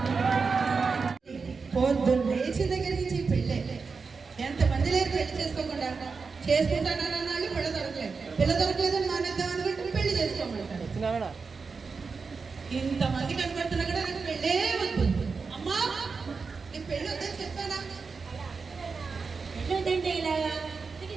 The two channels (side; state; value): left; quieter; 4.8 dB